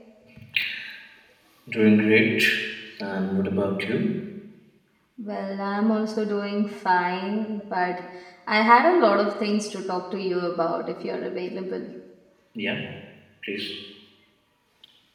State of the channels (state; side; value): identical; both; correlation 1.00